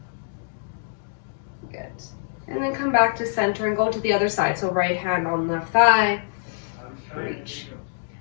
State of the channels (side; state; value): right; silent; digital silence